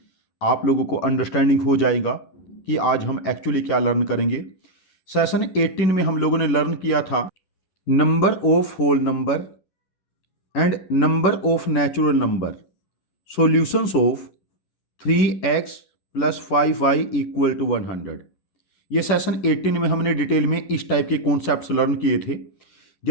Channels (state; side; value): late; right; 11 ms